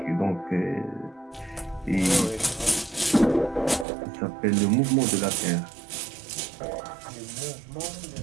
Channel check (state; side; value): drops out; left; at 3.9 s